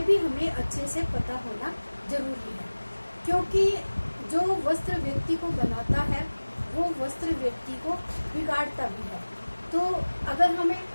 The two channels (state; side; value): inverted; both; correlation -1.00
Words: भी हमें अच्छे से पता होना जरूरी है, क्योंकि जो वस्त्र व्यक्ति को बनाता है वो वस्त्र व्यक्ति को बिगाड़ता भी है। तो अगर हमें